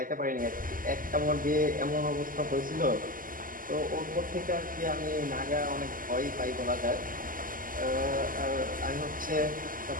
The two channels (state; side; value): late; left; 0.41 ms